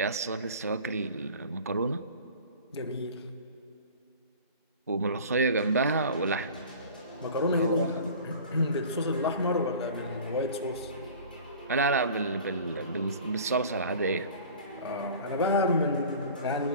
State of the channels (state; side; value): inverted; both; correlation -0.41